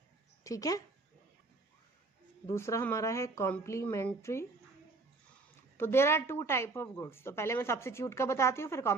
ठीक है. दूसरा हमारा है कॉम्प्लीमेंट्री. तो there are 2 type of goods. तो पहले मैं सब्स्टिट्यूट का बताती हूँ, फिर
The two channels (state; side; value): quieter; left; 3.7 dB